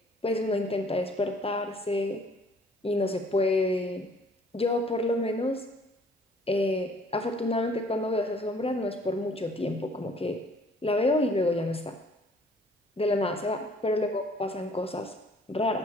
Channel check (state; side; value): normal; both; correlation 0.57